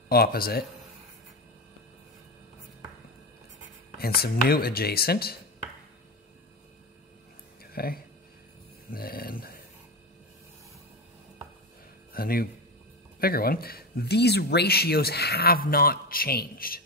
opposite and some new adjacent, okay, and then a new bigger one, these ratios have not changed.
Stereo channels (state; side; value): normal; both; correlation 0.18